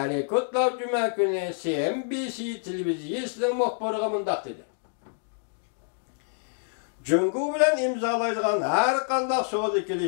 Kudlow juma kuni CNBC televiziyasining muxbiriga mundaq dedi. Jungo bilan imzolaydigan har qanday savdo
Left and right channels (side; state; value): right; silent; digital silence